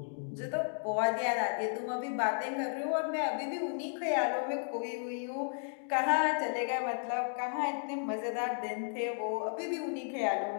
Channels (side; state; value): right; silent; 55 dB below the other